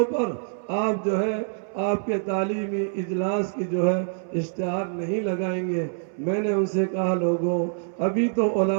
پر آپ جو ہے آپ کے تعلیمی اجلاس کی جو ہے اشتہار نہیں لگائیں گے. میں نے ان سے کہا لوگوں ابھی تو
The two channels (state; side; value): silent; left; 61 dB below the other